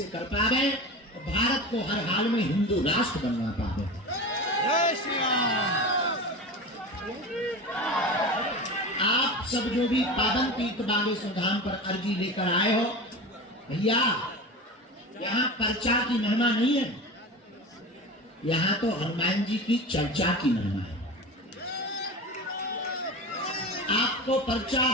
कर पाए और भारत को हर हाल में हिंदू राष्ट्र बनवा पाए। आप सब जो भी पावन तीर्थ बागेश्वर धाम पर अर्जी लेकर आए हो, भैया यहाँ पर्चा की महिमा नहीं है, यहाँ तो हनुमान जी की चर्चा की महिमा है। आपको पर्चा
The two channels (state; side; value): normal; both; correlation 0.29